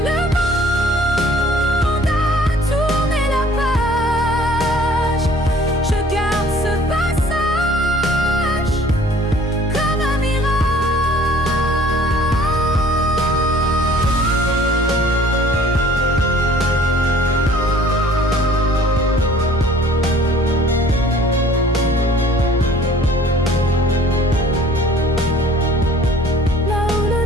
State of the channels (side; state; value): both; normal; correlation 0.53